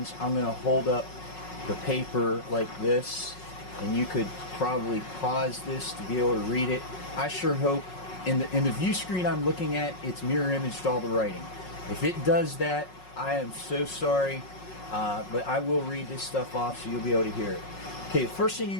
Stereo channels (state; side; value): late; right; 5.5 ms